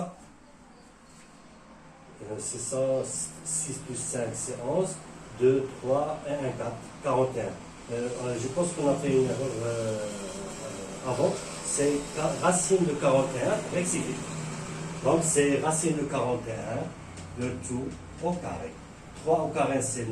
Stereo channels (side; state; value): both; identical; correlation 1.00